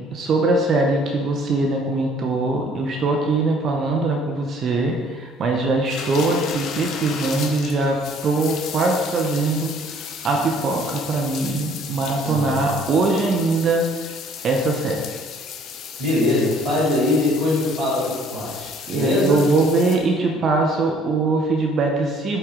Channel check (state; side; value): normal; both; correlation 0.58